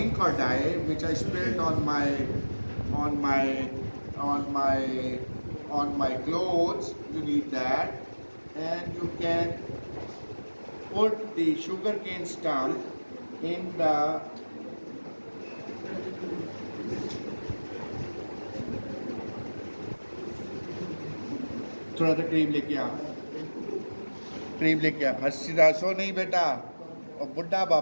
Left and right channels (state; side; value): inverted; both; correlation -1.00